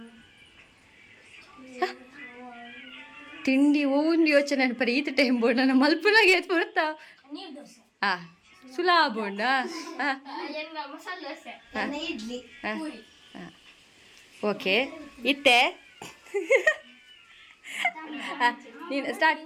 ತಿಂಡಿ ಒಂದು ಯೋಚನೆ ಅನ್ಪರಿ ಈತ ಟೈಮ್ ಬೋರ್ಡ್ ನನ್ನ ಮಲ್ಪನಾಗೆ ಎತ್ ಬರ್ತಾ ಸುಲಾ ಬೋಂಡ. ಓಕೆ ಇತ್ತೆ ನೀನು ಸ್ಟಾರ್ಟ್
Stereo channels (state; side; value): identical; both; correlation 1.00